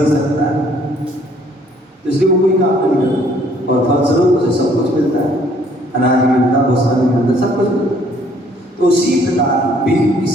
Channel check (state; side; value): normal; both; correlation 0.62